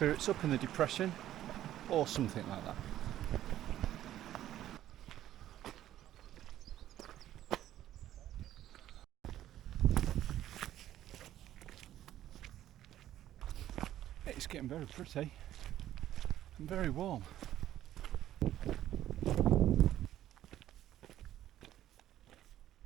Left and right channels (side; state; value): left; quieter; 12.6 dB